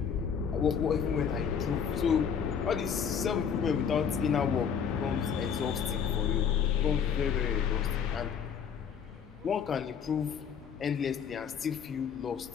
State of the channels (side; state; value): right; quieter; 7.4 dB